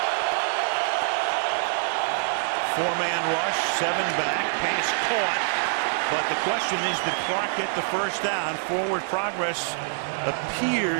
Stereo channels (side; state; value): left; silent; digital silence